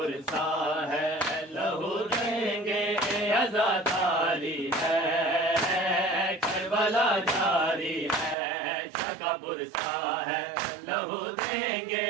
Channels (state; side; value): drops out; left; at 8.3 s